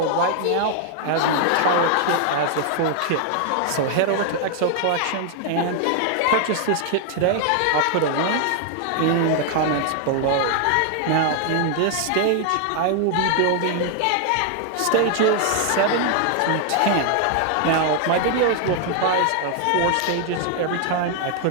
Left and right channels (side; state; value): both; different; correlation 0.00